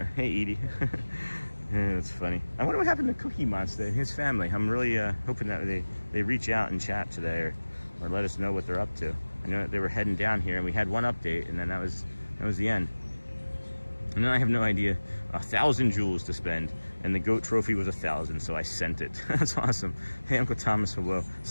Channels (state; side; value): inverted; both; correlation -1.00